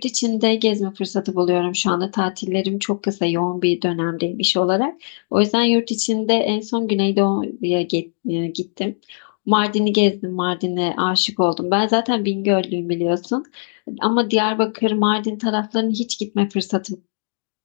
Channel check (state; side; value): silent; right; digital silence